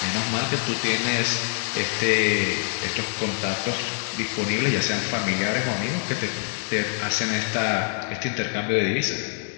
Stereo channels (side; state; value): right; silent; digital silence